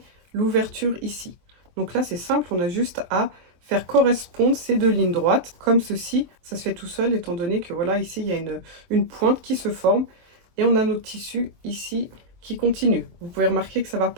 l'ouverture ici. Donc là, c'est simple, on a juste à faire correspondre ces 2 lignes droites, comme ceci. Ça se fait tout seul, étant donné que voilà, ici, il y a une pointe qui se forme. Et on a notre tissu ici qui continue. Vous pouvez remarquer que ça ne va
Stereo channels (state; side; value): late; left; 23 ms